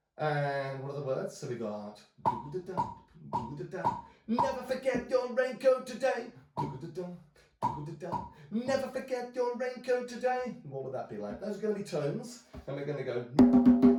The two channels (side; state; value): both; identical; correlation 1.00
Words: And what are the words? So we got do-da-da, do-da-da. Never forget your raincoat today. Do-da-da, do-da-da. Never forget your raincoat today. What would that be like? Those are going to be tones, and we're going to go